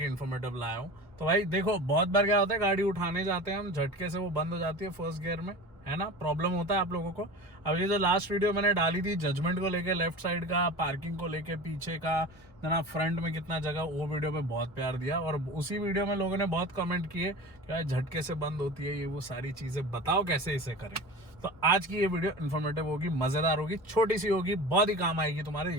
इन्फॉर्मेटिव लाया हूँ। तो भाई देखो, बहुत बार क्या होता है, गाड़ी उठाने जाते हैं हम, झटके से वो बंद हो जाती है फर्स्ट गियर में, है ना। प्रॉब्लम होता है आप लोगों को। अब ये जो लास्ट वीडियो मैंने डाली थी जजमेंट को लेके, लेफ्ट साइड का, पार्किंग को लेके, पीछे का ना, फ्रंट में कितना जगह, वो वीडियो पे बहुत प्यार दिया। और उसी वीडियो में लोगों ने बहुत कमेंट किए कि यार झटके से बंद होती है, ये वो सारी चीजें बताओ कैसे इसे करें। तो आज की ये वीडियो इन्फॉर्मेटिव होगी, मजेदार होगी, छोटी सी होगी, बहुत ही काम आएगी तुम्हारे,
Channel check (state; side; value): normal; both; correlation 0.34